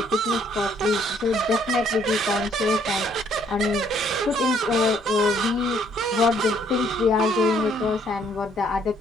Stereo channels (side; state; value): both; normal; correlation 0.65